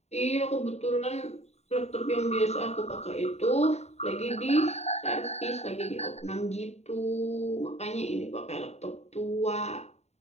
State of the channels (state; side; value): late; right; 0.32 ms